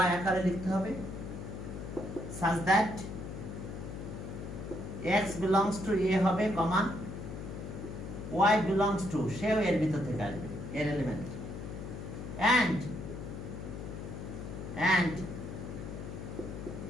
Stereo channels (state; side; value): noise; left; hum, 8 dB below the sound